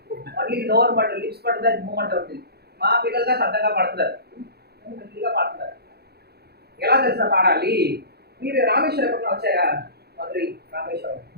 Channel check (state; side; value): late; left; 0.47 ms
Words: మళ్ళీ నోరు పడుతుంది, లిప్స్ పడుతుంది, మూమెంట్ అవుతుంది. మా పిల్లలుగా సరదాగా పడుతున్నారు, గట్టిగా పాడుతున్నారు. ఎలా తెలుసా పాడాలి? మీరు రామేశ్వరం ఎప్పుడన్నా వచ్చారా? మధురై రామేశ్వరం,